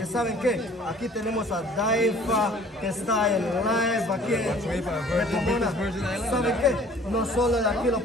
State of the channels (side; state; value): both; normal; correlation 0.52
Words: ¿Y saben qué? Aquí tenemos a DYFA que está en live aquí en Pomona. ¿Saben qué? No solo de aquí lo